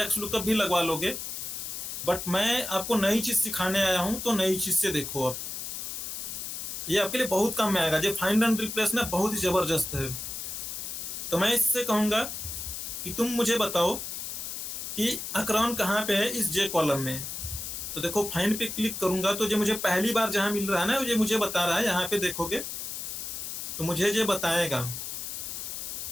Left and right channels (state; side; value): noise; left; hiss, 6 dB below the sound